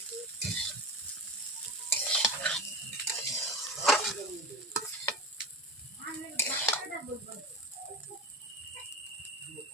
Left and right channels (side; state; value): both; normal; correlation 0.29